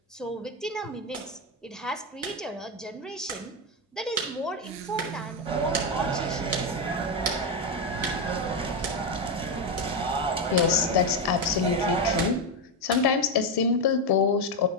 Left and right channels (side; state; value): both; normal; correlation 0.08